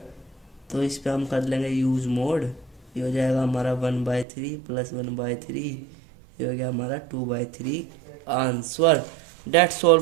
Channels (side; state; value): left; drops out; at 4.2 s